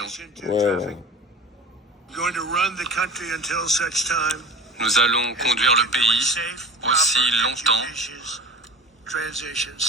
Ouais. Nous allons conduire le pays aussi longtemps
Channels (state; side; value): normal; both; correlation 0.35